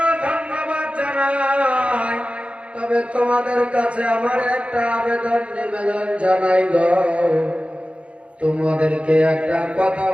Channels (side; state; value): left; late; 0.061 ms